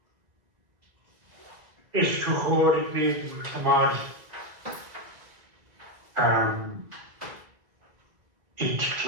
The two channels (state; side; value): late; left; 2.0 ms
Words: is gehoord met gemaakt iets